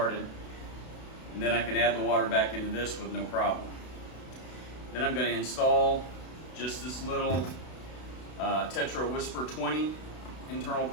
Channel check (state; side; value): late; right; 32 ms